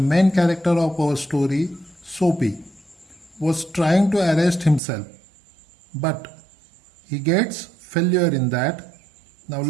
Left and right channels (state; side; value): drops out; left; at 4.8 s